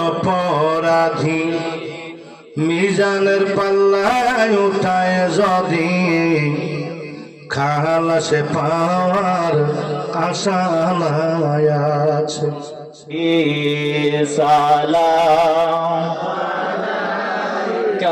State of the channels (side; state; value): both; identical; correlation 1.00